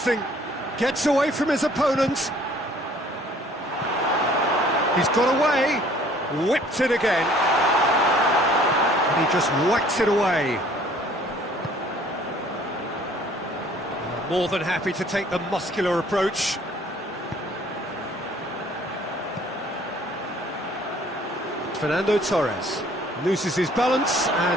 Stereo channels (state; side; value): normal; both; correlation 0.56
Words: Gets away from his opponent. He's got away. Whipped it again. And he just whacks it away. More than happy to take the muscular approach. Fernando Torres loses his balance